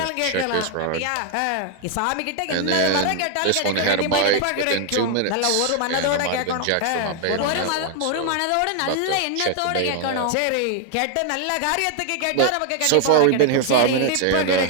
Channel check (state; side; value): different; both; correlation 0.00